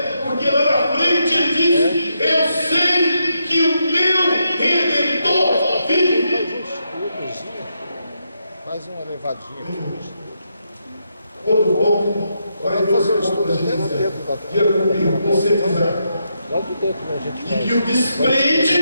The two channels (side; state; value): both; inverted; correlation -0.81